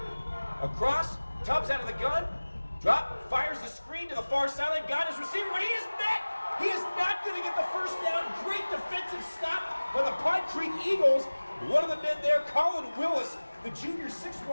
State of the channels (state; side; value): inverted; both; correlation -1.00